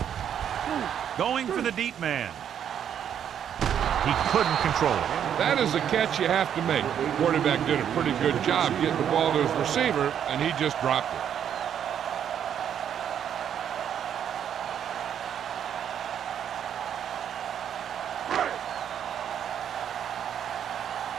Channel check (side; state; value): left; quieter; 9.1 dB